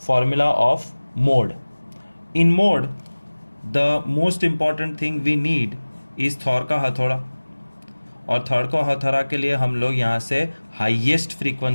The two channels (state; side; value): inverted; both; correlation -1.00